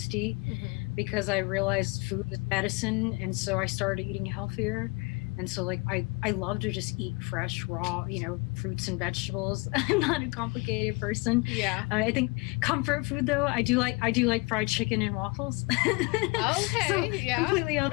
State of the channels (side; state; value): right; quieter; 27.0 dB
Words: because I realized food is medicine, and so I started eating healthier. And so, like, I love to just eat fresh, raw, fruits and vegetables. I'm not a complicated person. Yeah. I think comfort food, though, I do like fried chicken and waffles. Okay. So, yeah. completely